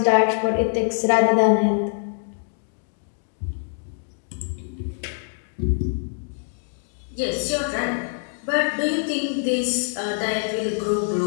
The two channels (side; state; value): right; silent; digital silence